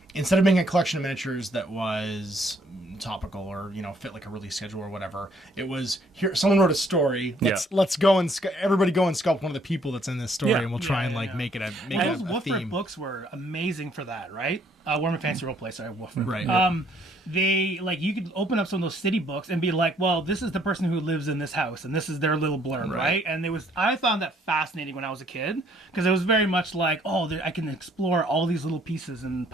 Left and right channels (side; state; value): both; normal; correlation 0.64